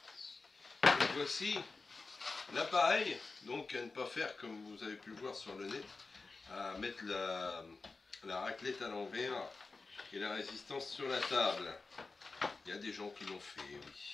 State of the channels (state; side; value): quieter; right; 3.9 dB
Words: Et voici l'appareil, donc à ne pas faire comme vous avez pu le voir sur le net, à mettre la raclette à l'envers et la résistance sur la table. Il y a des gens qui l'ont fait, oui.